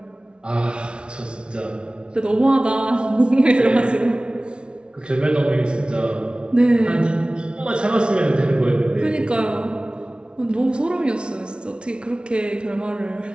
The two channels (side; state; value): left; late; 0.057 ms